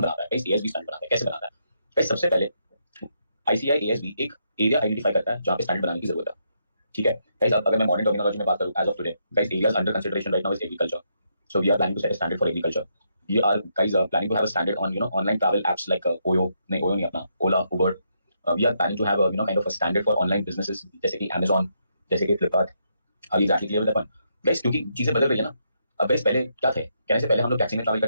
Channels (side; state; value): both; inverted; correlation -0.78